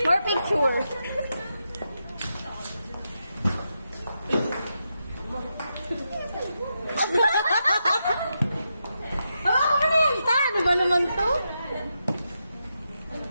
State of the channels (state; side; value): inverted; both; correlation -0.85